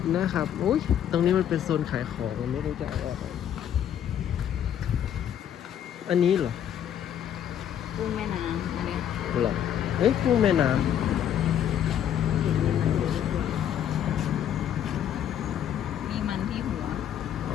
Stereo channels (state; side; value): quieter; right; 9.9 dB